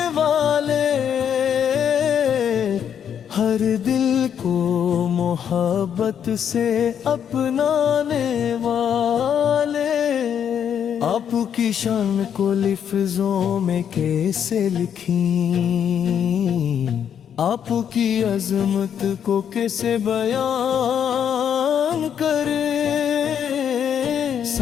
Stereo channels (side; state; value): right; quieter; 8.5 dB